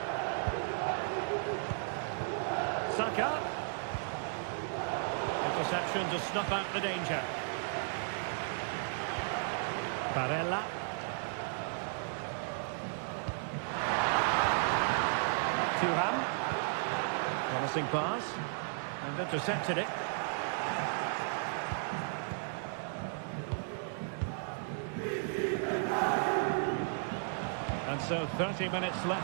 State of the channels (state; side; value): silent; left; digital silence